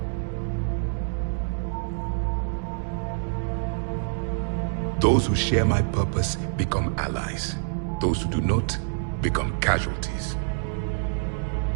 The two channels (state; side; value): silent; left; digital silence